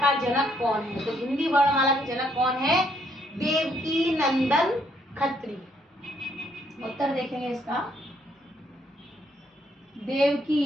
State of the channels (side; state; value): both; normal; correlation 0.70